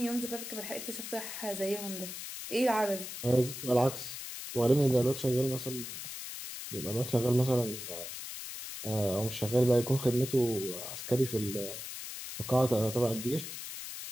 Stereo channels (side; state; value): left; noise; hiss, 8 dB below the sound